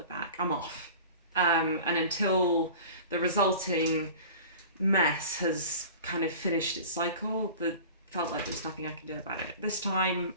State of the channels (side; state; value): both; inverted; correlation -0.40